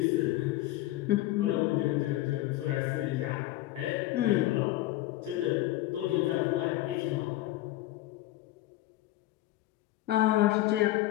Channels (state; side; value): quieter; right; 16.0 dB